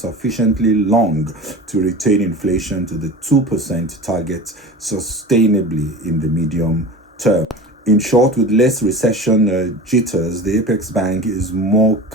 long to retain inflation to the 2% target sustainably in the medium term. In short, with less recession jitters, the Apex Bank is more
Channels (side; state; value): both; normal; correlation 0.34